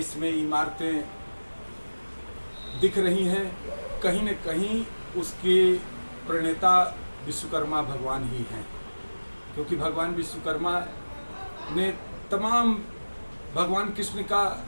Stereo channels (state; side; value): inverted; both; correlation -1.00